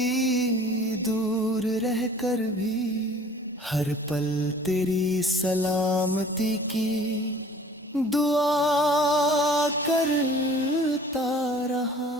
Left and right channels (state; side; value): normal; both; correlation 0.50